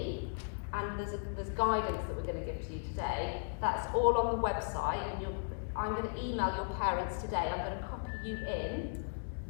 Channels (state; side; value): silent; right; digital silence